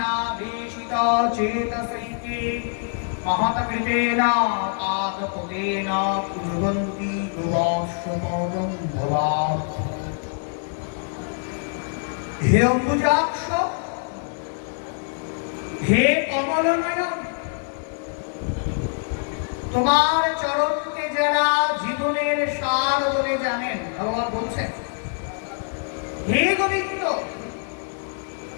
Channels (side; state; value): right; silent; 62 dB below the other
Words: देशित चेतसैके महत्कृतेन पादपदेन कुर्वन्ति गोवाश्वपदं भवात्। হে অম্বুজাক্ষ, হে কমলনয়ন, তোমার চরণকে যারা জীবনের সার বলে জানেন, ভগবান বলছেন হে গোবিন্দ,